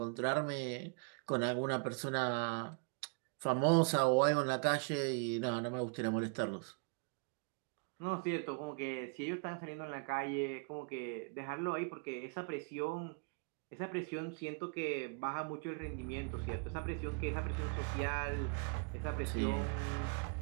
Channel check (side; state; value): left; quieter; 37.7 dB